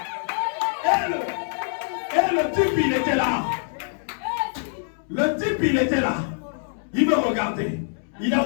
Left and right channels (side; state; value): right; silent; 62 dB below the other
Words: Et le type, il était là. Le type, il était là. Il me regardait. Il